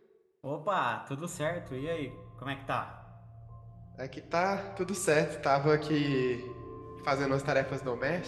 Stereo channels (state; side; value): identical; both; correlation 1.00